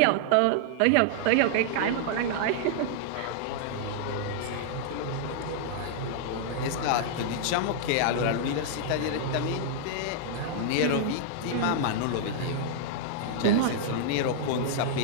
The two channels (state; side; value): different; both; correlation -0.01